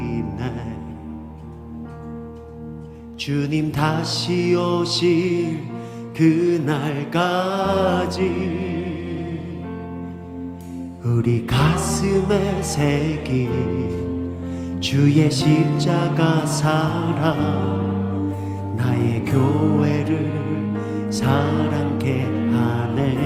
주님 다시 오실 그날까지 우리 가슴에 새긴 주의 십자가 사랑 나의 교회를 사랑케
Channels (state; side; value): identical; both; correlation 1.00